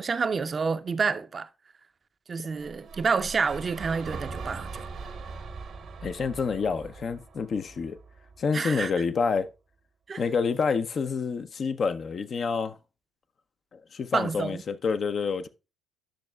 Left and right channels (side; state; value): both; normal; correlation 0.82